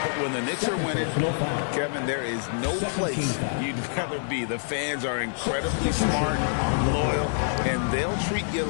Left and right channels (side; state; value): right; silent; 61 dB below the other